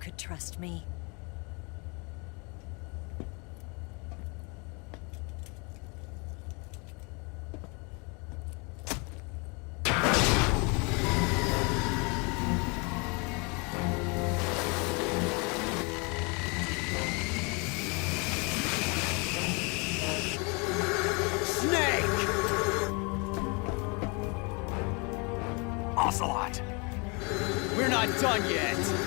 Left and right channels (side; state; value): right; quieter; 31.1 dB